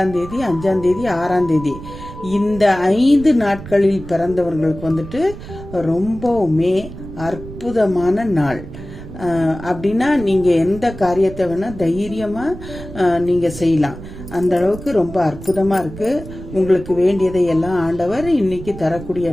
தேதி, 5ஆம் தேதி, 6ஆம் தேதி, இந்த 5 நாட்களில் பிறந்தவர்களுக்கு வந்துட்டு ரொம்பவுமே அற்புதமான நாள். அப்படின்னா நீங்கள் எந்த காரியத்தை வேணால் தைரியமாக நீங்கள் செய்யலாம். அந்த அளவுக்கு ரொம்ப அற்புதமாக இருக்குது. உங்களுக்கு வேண்டியதை எல்லாம் ஆண்டவர் இன்னைக்கு தரக்கூடிய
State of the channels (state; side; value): noise; right; rumble, 13 dB below the sound